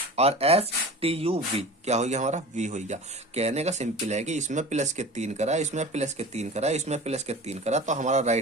और STUV क्या हो गया हमारा V हो गया। कहने का सिंपल है कि इसमें प्लस के 3 करा, इसमें प्लस के 3 करा, इसमें प्लस के 3 करा, तो हमारा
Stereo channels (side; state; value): both; normal; correlation 0.36